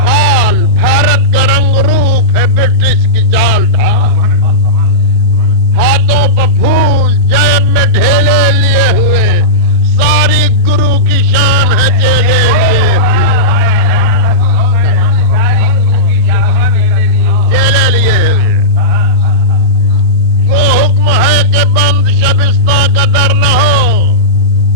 حال بھارت کا رنگ روپ ہے برٹش کی چال ڈھال، ہاتھوں پہ پھول جیب میں ڈھیلے لیے ہوئے، ساری گرو کی شان ہے چیلے لیے ہوئے، چیلے لیے ہوئے۔ وہ حکم ہے کہ بند شبستہ کا در نہ ہو،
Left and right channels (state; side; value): normal; both; correlation -0.14